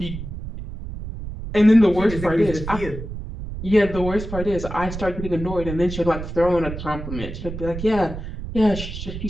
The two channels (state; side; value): noise; right; rumble, 8 dB below the sound